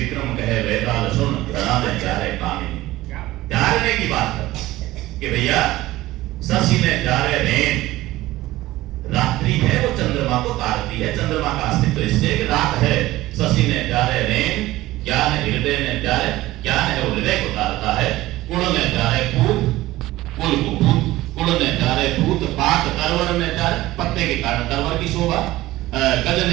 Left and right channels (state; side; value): quieter; left; 17.1 dB